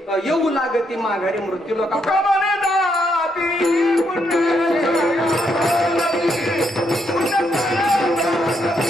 येऊ लागती माघारी मृत्यू लोका. तुका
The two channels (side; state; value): both; normal; correlation 0.76